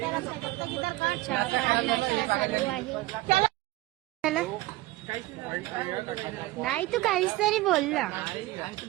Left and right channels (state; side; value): quieter; left; 18.3 dB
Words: चहा पाणी नाश्ता चालू आहे. चला. नाही तू काहीच तरी बोलला.